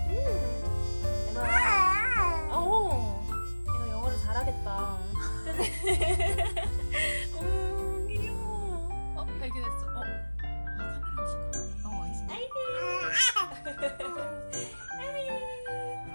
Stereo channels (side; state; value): both; inverted; correlation -1.00